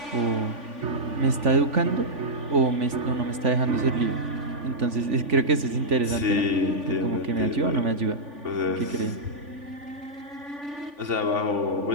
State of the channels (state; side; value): late; left; 3.5 ms